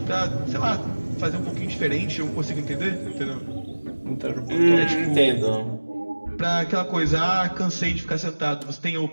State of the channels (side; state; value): both; inverted; correlation -1.00